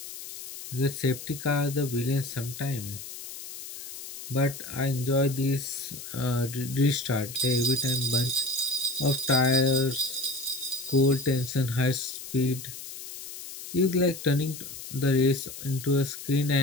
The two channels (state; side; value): noise; left; hiss, 11 dB below the sound